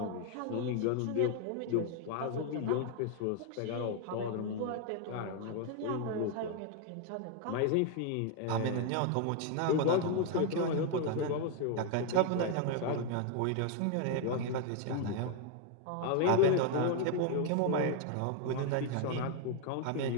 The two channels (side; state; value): both; different; correlation 0.00